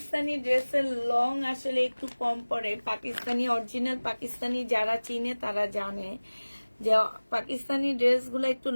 ড্রেসের লং আসলে একটু কম পড়ে, পাকিস্তানি অরিজিনাল পাকিস্তানি যারা চিনে তারা জানে যে পাকিস্তানি ড্রেসগুলো একটু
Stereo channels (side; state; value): both; inverted; correlation -1.00